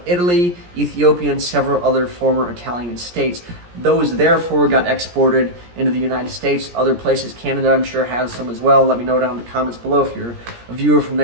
Italy, Ethiopia, and several other former Italian states. Those therefore got exported into the United States, other places. Canada, I'm sure, has some as well. Let me know down in the comments below if you're a viewer from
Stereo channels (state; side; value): late; left; 17 ms